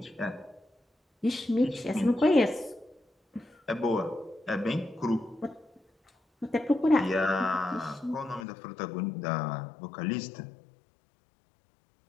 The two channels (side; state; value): right; drops out; at 8.5 s